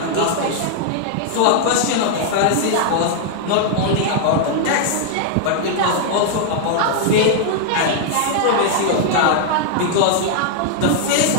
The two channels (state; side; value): different; both; correlation 0.00